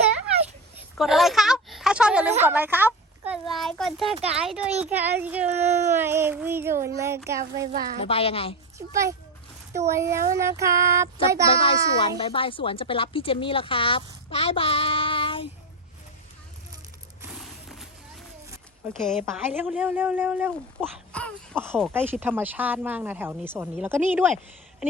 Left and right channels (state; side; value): normal; both; correlation 0.20